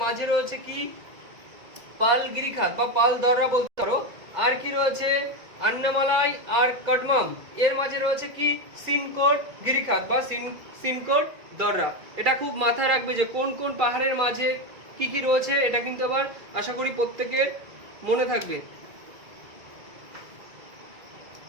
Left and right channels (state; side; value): late; left; 2.0 ms